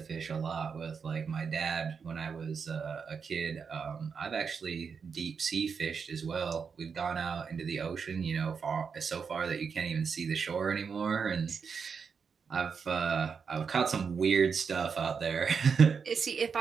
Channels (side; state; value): left; quieter; 6.0 dB